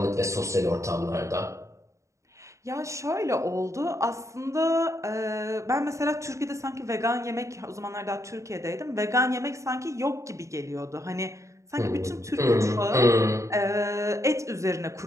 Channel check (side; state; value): left; late; 0.15 ms